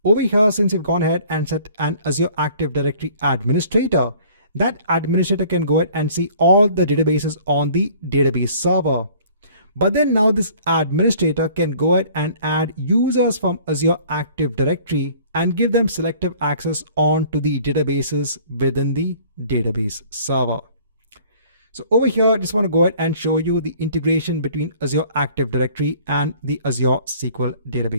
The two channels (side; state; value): both; inverted; correlation -0.53